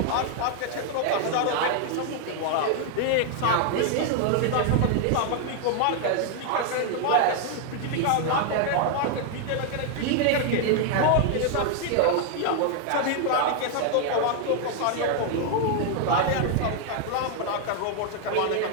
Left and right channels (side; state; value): both; different; correlation 0.00